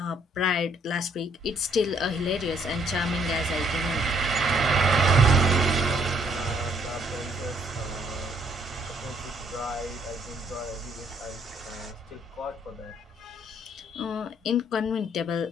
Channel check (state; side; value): normal; both; correlation 0.66